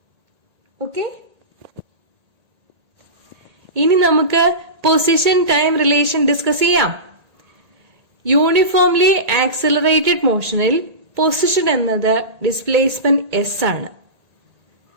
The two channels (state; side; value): late; left; 1.8 ms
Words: Okay? ഇനി നമുക്ക് position time relation discuss ചെയ്യാം. Uniformly accelerated മോഷനിൽ പൊസിഷൻ എന്നത് ഡിസ്പ്ലേസ്മെന്റ് എസ് ആണ്.